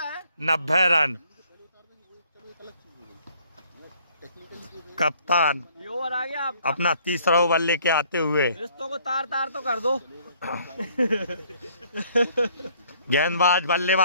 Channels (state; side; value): inverted; both; correlation -0.62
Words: 90 रन। कप्तान ये ओवर आ गया। अपना तीसरा ओवर लेके आते हुए रिश्तों को तार तार तो कर दो। गेंदबाज